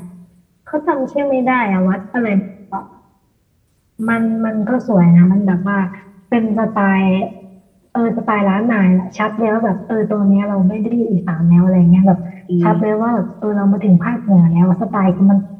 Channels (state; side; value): identical; both; correlation 1.00